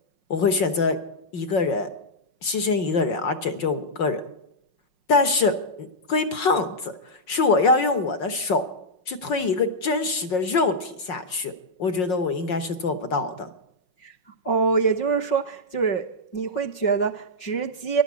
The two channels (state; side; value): late; right; 5.5 ms